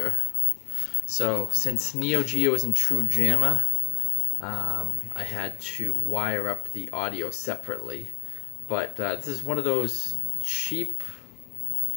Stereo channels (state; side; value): quieter; right; 38.3 dB